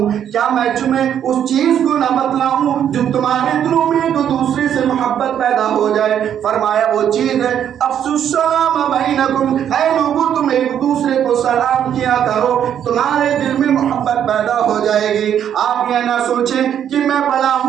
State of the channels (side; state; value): left; quieter; 9.4 dB